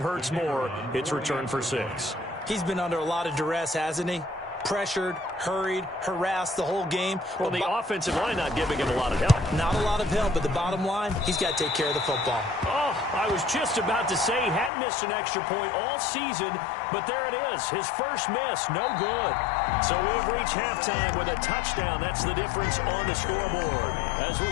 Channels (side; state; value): right; drops out; at 14.7 s